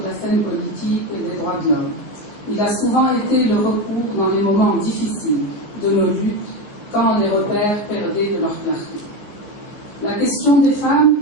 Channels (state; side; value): late; right; 14 ms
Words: scène politique et des droits de l'homme. Il a souvent été le recours dans les moments difficiles de nos luttes, quand les repères perdaient de leur clarté. La question des femmes